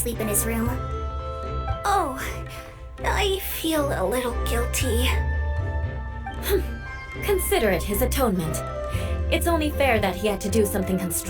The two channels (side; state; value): both; identical; correlation 1.00